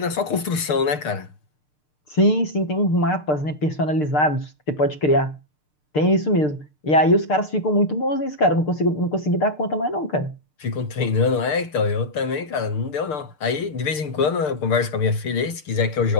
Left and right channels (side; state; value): right; late; 6.7 ms